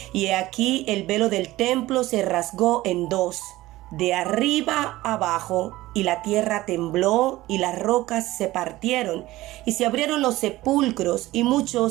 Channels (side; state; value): left; quieter; 17.4 dB